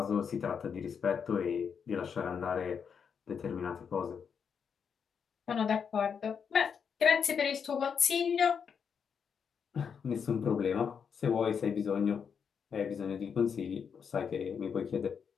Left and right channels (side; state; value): right; quieter; 6.8 dB